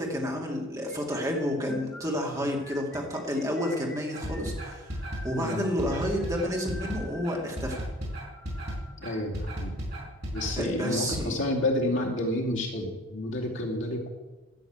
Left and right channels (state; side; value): normal; both; correlation 0.51